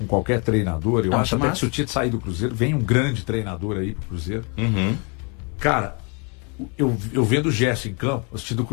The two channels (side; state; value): right; quieter; 34.3 dB